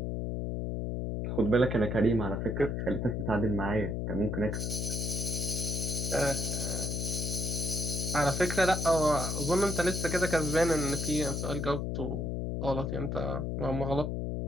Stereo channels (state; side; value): noise; left; hum, 2 dB below the sound